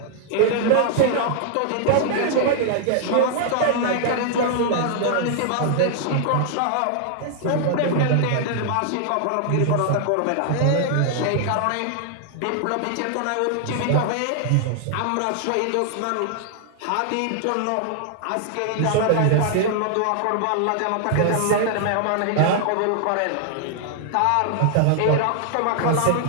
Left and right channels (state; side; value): different; both; correlation 0.00